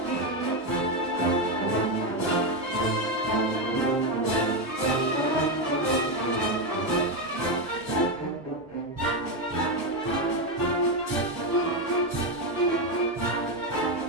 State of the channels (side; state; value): both; normal; correlation 0.08